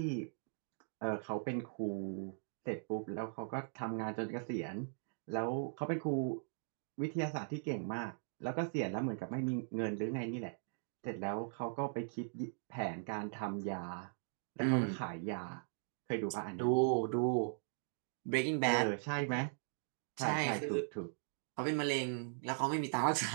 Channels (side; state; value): left; silent; digital silence